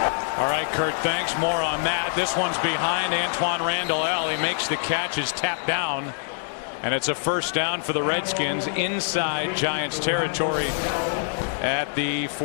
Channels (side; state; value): right; silent; digital silence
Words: All right, Kurt, thanks. More on that. This one's behind Antoine Randall. He makes the catch, is tapped down, and it's a first down for the Redskins inside Giants territory at the